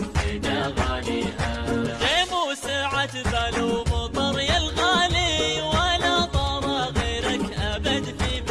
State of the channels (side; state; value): both; identical; correlation 1.00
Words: فدا غاليها. غيم وسعت بال ومطر يا الغالي، ولا طار غيرك أبد في